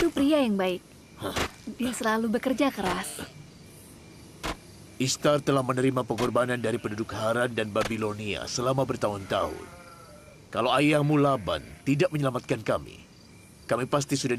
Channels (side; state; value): both; identical; correlation 1.00